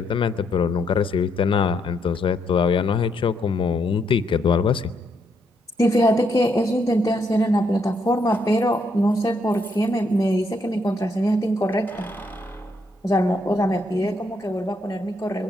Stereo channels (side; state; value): both; normal; correlation 0.75